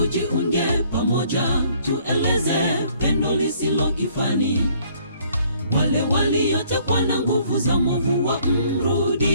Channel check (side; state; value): both; inverted; correlation -0.62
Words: pamoja, tueleze pendo lisilo kifani. Wale waliotekwa na nguvu za mwovu